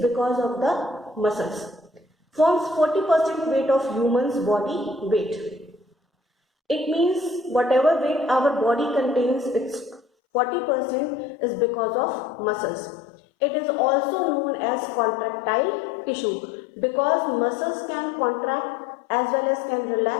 of the muscles. Forms 40% weight of human's body weight. It means whatever weight our body contains, its 40% is because of muscles. It is also known as contractile tissue because muscles can contract as well as can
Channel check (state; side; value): drops out; right; at 10.0 s